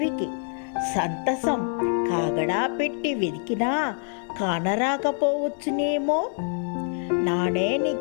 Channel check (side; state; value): right; silent; 56 dB below the other